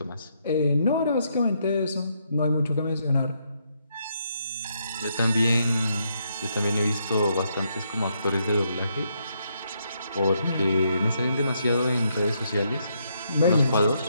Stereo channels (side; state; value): both; inverted; correlation -0.76